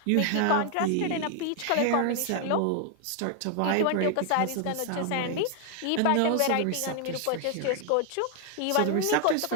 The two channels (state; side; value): different; both; correlation 0.00